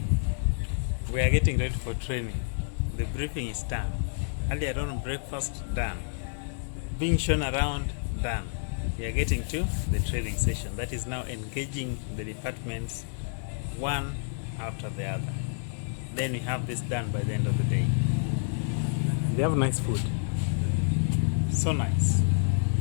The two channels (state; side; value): silent; right; 59 dB below the other